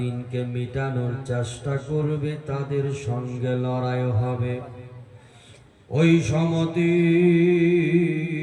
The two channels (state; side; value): identical; both; correlation 1.00